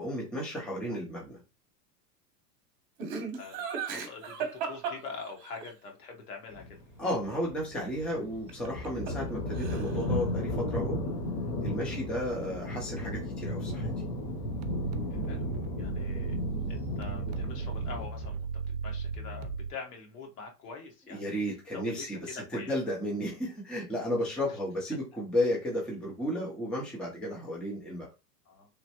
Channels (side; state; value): both; normal; correlation 0.25